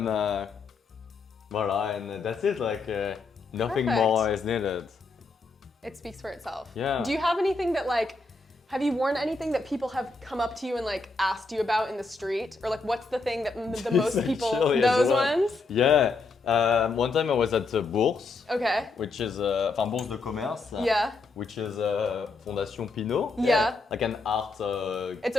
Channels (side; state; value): right; quieter; 3.8 dB